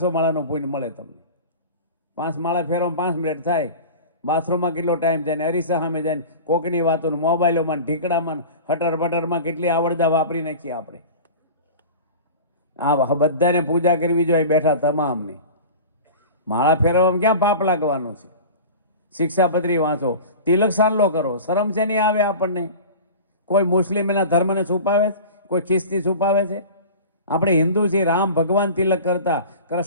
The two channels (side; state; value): both; inverted; correlation -0.36